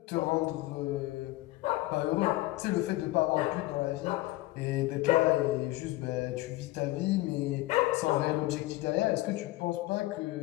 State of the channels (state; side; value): quieter; right; 18.8 dB